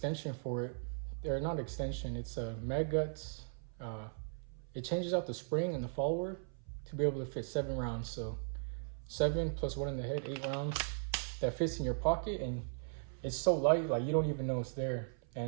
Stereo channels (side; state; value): left; silent; 53 dB below the other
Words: for it. They're not extension, it's a mag guts. It changes out the spring and the follower to be able to fit 7 rounds. So 7 plus 1 in the head, 8 rounds that fits in your pocket, and it's so light, like you don't even know it's there.